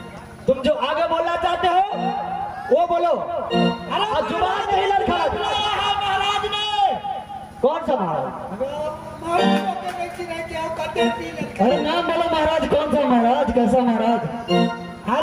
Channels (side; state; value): both; identical; correlation 1.00